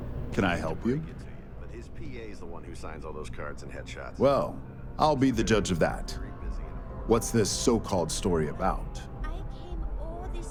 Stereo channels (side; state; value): both; identical; correlation 1.00